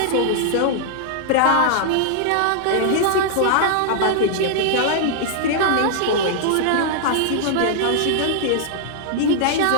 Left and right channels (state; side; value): different; both; correlation -0.01